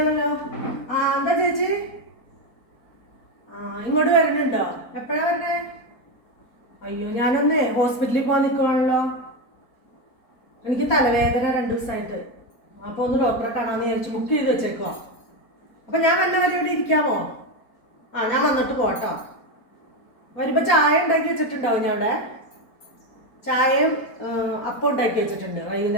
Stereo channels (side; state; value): right; late; 4.2 ms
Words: എന്താ ചേച്ചി? ഇങ്ങോട്ട് വരുന്നുണ്ടോ? എപ്പോഴാ വരണേ? അയ്യോ, ഞാനൊന്ന് ഹോസ്പിറ്റലിൽ പോകാൻ നിൽക്കുവാണല്ലോ. എനിക്ക് തലവേദന 2 ദിവസമായിട്ട്. അപ്പോൾ ഒന്ന് ഡോക്ടറെ കാണാമെന്ന് വിചാരിച്ചു ബുക്ക് ചെയ്ത് വെച്ചേക്കോ. അപ്പം ഞാൻ വന്നവരെ ഇവിടെ ഇരിക്കാമോ? ഞാൻ വന്നിട്ട് പോട്ടോ. വരുമ്പോൾ ചായ ഉണ്ടാക്കി വെച്ചിട്ടുണ്ടാവും. ഞാൻ അവിടെ ചായയും അപ്പം ഉണ്ടാക്കി വെച്ചിട്ടുണ്ട്.